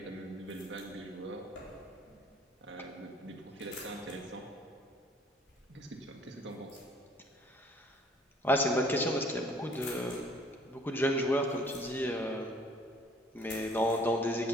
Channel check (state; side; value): normal; both; correlation 0.56